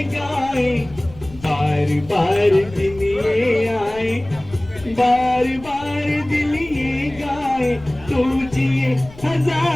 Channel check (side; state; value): left; noise; rumble, 19 dB below the sound